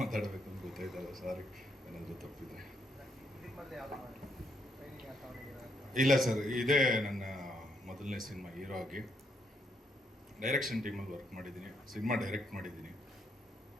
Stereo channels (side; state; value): both; normal; correlation 0.76